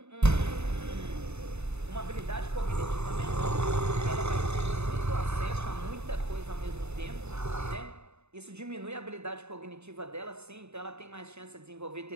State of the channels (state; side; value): late; left; 0.81 ms